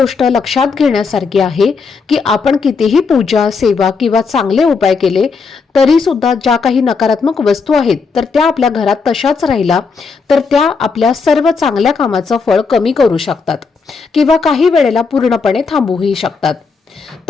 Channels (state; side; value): quieter; right; 4.9 dB